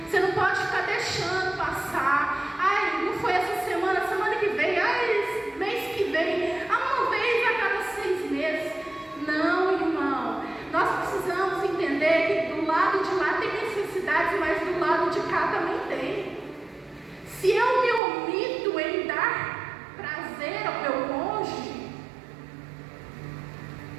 Você não pode ficar deixando passar. Ai, não foi essa semana, semana que vem, ai, mês que vem, uma vez a cada 6 meses. Não, irmão. Nós precisamos entender que do lado de lá tem necessidades, mas do lado de cá também tem. Se eu me omito em dar prazer ao meu cônjuge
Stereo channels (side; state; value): left; drops out; at 18.0 s